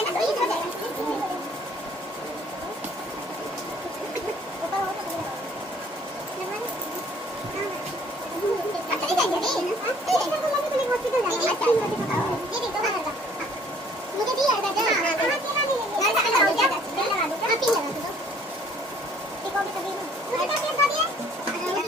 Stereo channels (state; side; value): normal; both; correlation 0.58